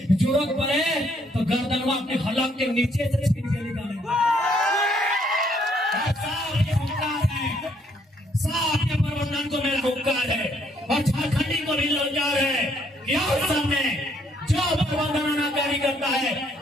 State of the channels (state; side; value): normal; both; correlation 0.68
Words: जरूरत पड़े तो गर्दनवा अपने हलक के नीचे से छीन के निकालेंगे। साफ ये हुक्कार है, साफ ये प्रबंधन को मेरा हुक्कार है। और झारखंडी को भी रोजगार है। यहाँ सामने जो प्रबंधन अनाकारी करता है